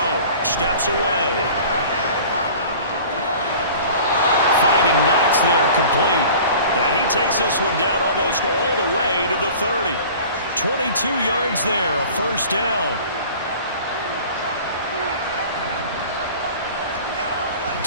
Steps away. Finding Knox there, complete. And he takes this one down almost all the way to the 30. 22 yards there, a first down.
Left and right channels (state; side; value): inverted; both; correlation -0.43